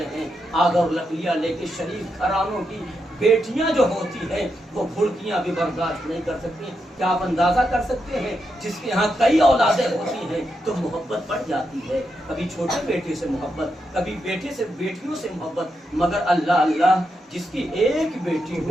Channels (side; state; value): both; normal; correlation 0.84